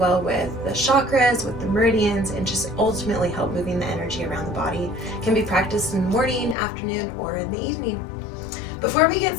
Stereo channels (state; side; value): drops out; right; at 6.6 s